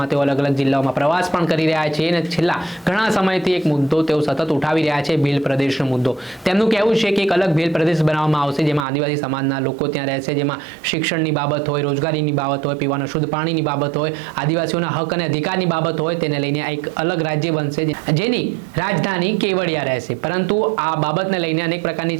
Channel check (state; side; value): drops out; left; at 8.8 s